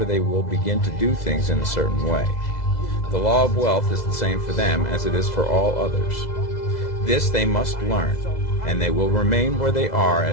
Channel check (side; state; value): right; late; 2.0 ms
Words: they will begin to do things in a certain way. The law of wealth is the same for them as it is for all others. This they must learn, and they will remain where they are